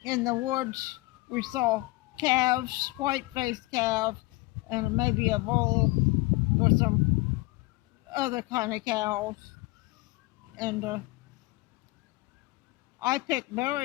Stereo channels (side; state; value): right; quieter; 21.7 dB